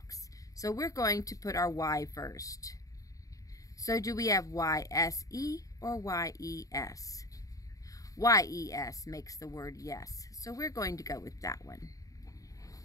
so we're going to put our Y first. So do we have Y-S-E or Y-E-S? Y-E-S makes the word yes, so we're going to go with that one.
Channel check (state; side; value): late; right; 0.16 ms